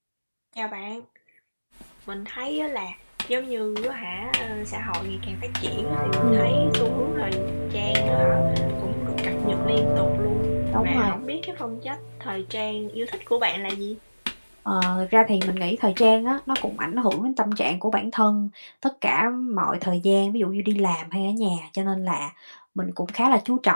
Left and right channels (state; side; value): inverted; both; correlation -1.00